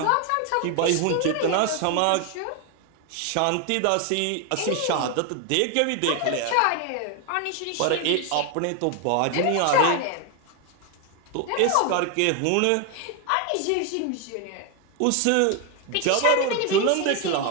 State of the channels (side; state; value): both; different; correlation 0.01